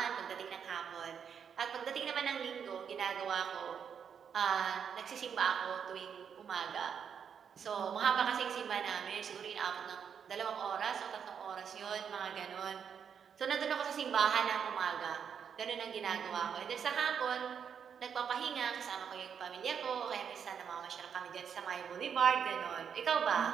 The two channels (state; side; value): quieter; left; 7.4 dB